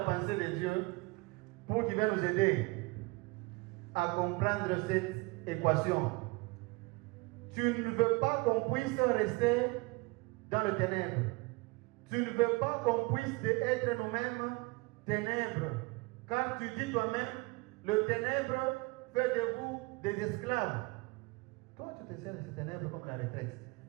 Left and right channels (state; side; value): quieter; left; 25.3 dB